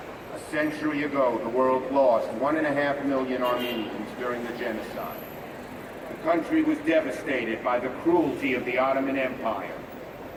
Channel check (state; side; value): identical; both; correlation 1.00